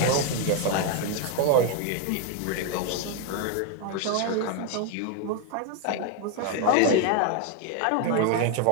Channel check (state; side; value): different; both; correlation 0.01